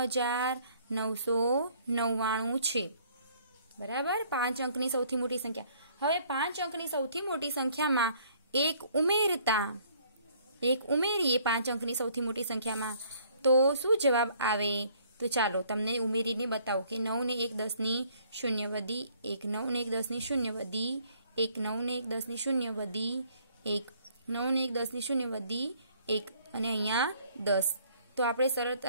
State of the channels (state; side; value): inverted; both; correlation -0.61